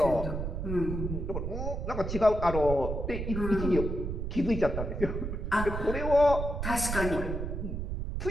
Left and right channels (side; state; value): right; noise; rumble, 3 dB below the sound